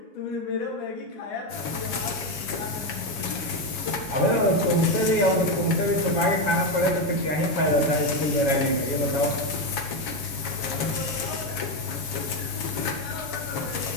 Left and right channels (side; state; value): right; late; 7.2 ms